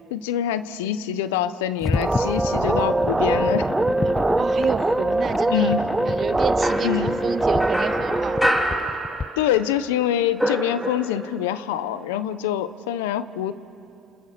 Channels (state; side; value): normal; both; correlation 0.59